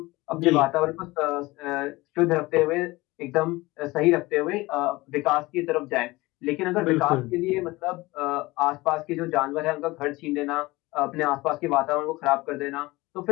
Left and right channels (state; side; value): quieter; right; 20.9 dB